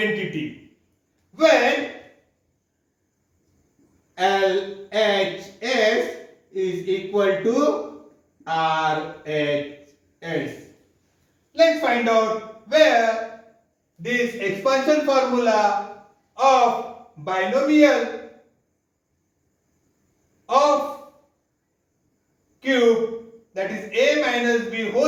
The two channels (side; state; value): both; identical; correlation 1.00